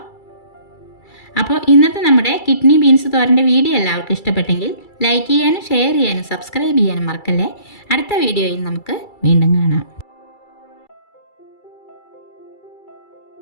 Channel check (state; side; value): late; right; 2.3 ms